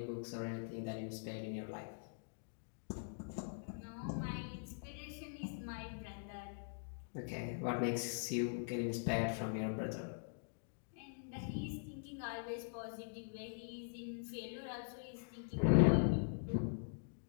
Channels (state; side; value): silent; right; digital silence